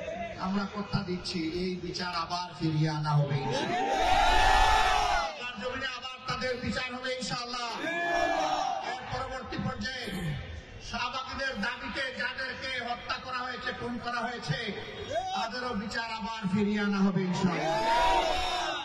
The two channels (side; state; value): both; identical; correlation 1.00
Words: আমরা কথা দিচ্ছি এই বিচার আবার ফিরিয়ে আনা হবে ইনশাআল্লাহ। জমিনে আবার তাদের বিচার হবে ইনশাআল্লাহ। এর পরবর্তী পর্যায়ে শাহবাগীদের দাবিতে যাদেরকে হত্যা করা হয়েছে, খুন করা হয়েছে, তাদেরও বিচার আবার ফিরিয়ে আনা হবে ইনশাআল্লাহ।